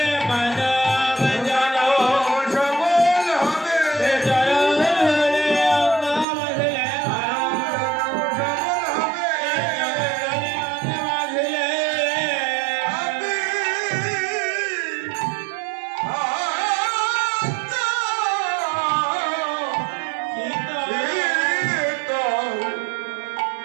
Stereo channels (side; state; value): left; drops out; at 6.2 s